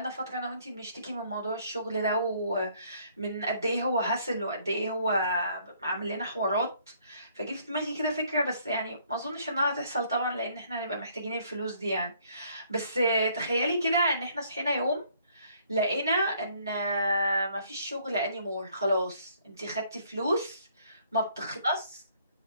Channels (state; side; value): inverted; both; correlation -0.64